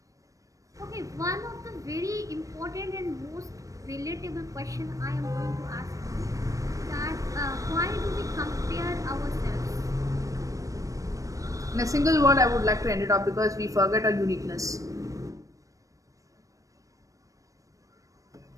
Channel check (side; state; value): left; late; 0.16 ms